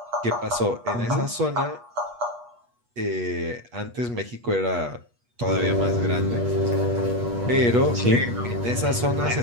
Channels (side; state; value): left; late; 8.3 ms